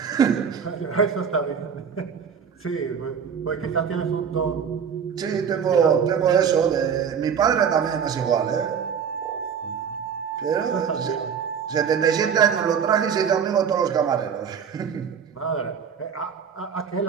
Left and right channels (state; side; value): quieter; left; 7.2 dB